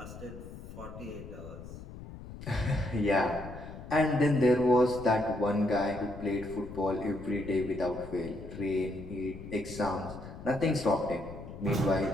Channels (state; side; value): noise; left; rumble, 13 dB below the sound